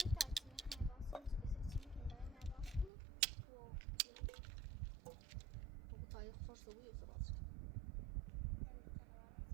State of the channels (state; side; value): drops out; left; at 2.9 s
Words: سوی و سراغ شد.